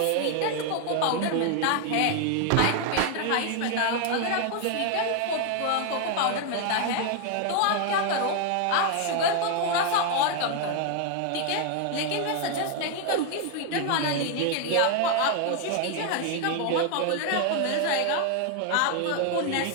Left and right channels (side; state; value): both; different; correlation 0.00